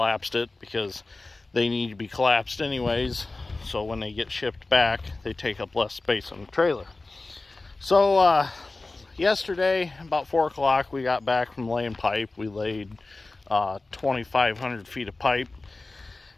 it because they need to be collapsed anyways, so when they get shipped back they take up less space on the trailer. So yesterday about 4 o'clock we got back from laying pipe. We laid 2,500 feet of pipe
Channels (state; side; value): quieter; right; 3.3 dB